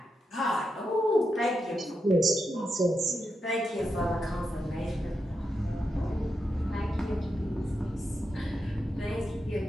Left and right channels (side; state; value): both; normal; correlation 0.86